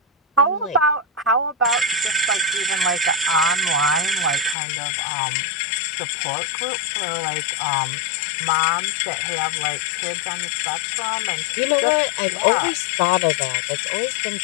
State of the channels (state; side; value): drops out; right; at 4.5 s